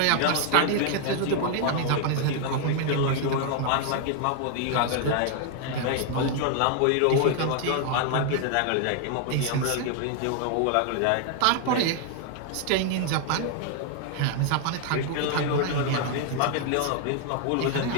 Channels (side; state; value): both; different; correlation 0.00